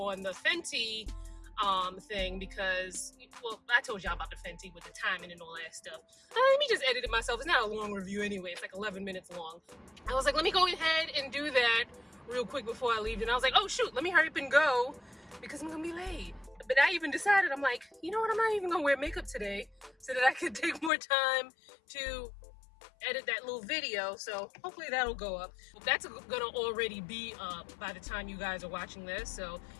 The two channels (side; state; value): right; drops out; at 20.9 s